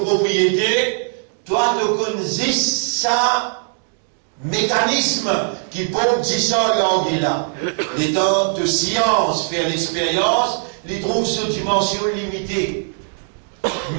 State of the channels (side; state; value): left; silent; digital silence